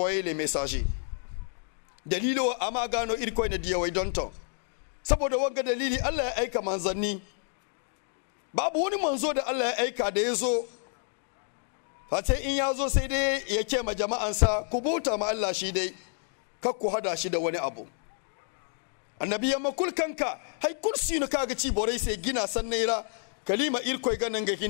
les messagers. Dalilo amagano irko ne diya wai donto. Saboda wanga dalili Allah ya aika manzanni. Babu wani manzo da Allah ya aika da yazo. Fate in yazo sai dai ya ce ma jama'ansa ku bauta ma Allah shi dai, kar ku hada shi da wani abu. Annabi ya makul kanka hay kursi no kaga ci borai sai gina sannaira kalima irko ganan ga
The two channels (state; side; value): silent; right; 58 dB below the other